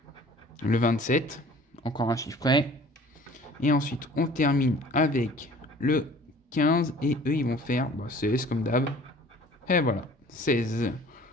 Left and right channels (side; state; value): both; normal; correlation 0.49